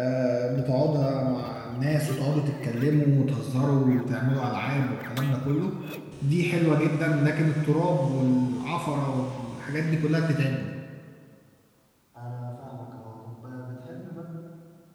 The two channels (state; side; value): identical; both; correlation 1.00